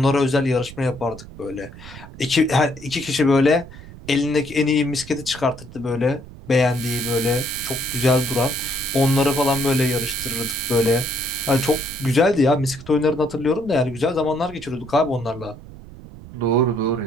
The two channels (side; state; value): right; noise; rumble, 17 dB below the sound